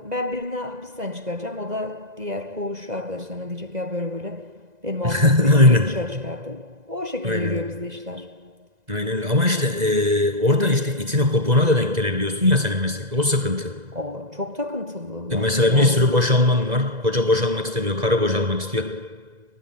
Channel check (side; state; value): left; late; 2.0 ms